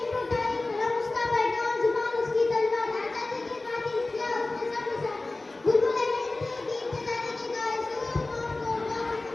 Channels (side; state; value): right; quieter; 3.1 dB